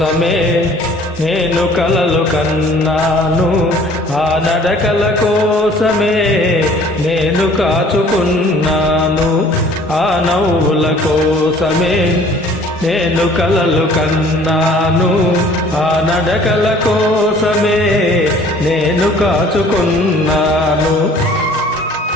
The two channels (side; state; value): both; normal; correlation 0.53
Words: నేను కలలు కన్నాను, ఆ నడకల కోసమే నేను కాచుకున్నాను. ఆ నవ్వుల కోసమే నేను కలలు కన్నాను, ఆ నడకల కోసమే నేను కాచుకున్నాను.